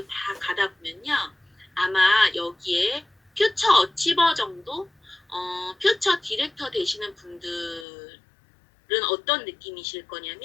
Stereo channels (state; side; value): drops out; right; at 7.9 s